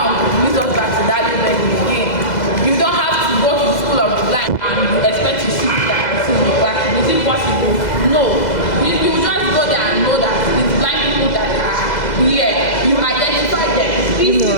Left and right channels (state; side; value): late; right; 2.0 ms